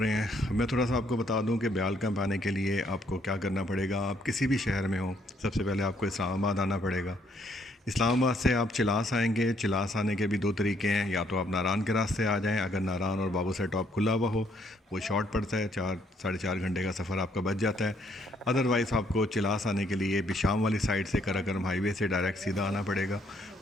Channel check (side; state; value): both; normal; correlation 0.69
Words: हैं। मैं थोड़ा सा आपको बता दूं कि ब्याल कैंप आने के लिए आपको क्या करना पड़ेगा। आप किसी भी शहर में हो, सबसे पहले आपको इस्लामाबाद आना पड़ेगा। इस्लामाबाद से आप चिलास आएंगे। चिलास आने के भी दो तरीके हैं, या तो आप नारान के रास्ते आ जाएं, अगर नारान और बाबू से टॉप खुला हुआ हो, वो शॉर्ट पड़ता है, 4-4.5 घंटे का सफ़र आपका बच जाता है। अदरवाइज़ आपको चिलास आने के लिए बिशाम वाली साइड से कराकरम हाईवे से डायरेक्ट सीधा आना पड़ेगा,